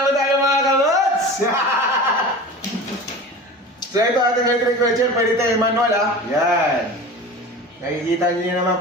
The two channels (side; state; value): both; normal; correlation 0.34